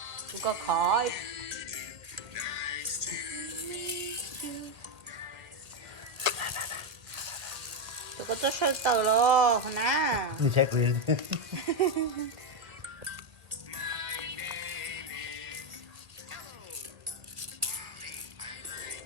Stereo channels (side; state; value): left; late; 2.1 ms